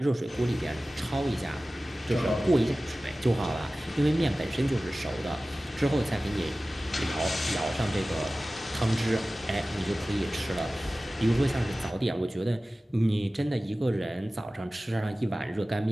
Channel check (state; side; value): normal; both; correlation 0.97